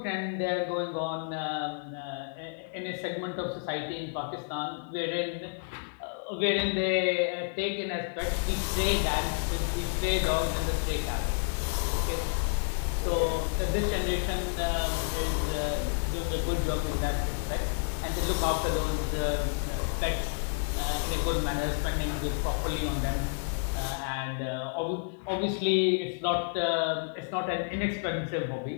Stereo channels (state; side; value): silent; right; digital silence